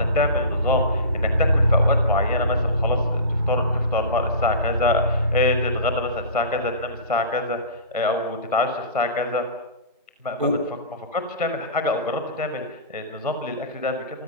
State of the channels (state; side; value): inverted; both; correlation -0.33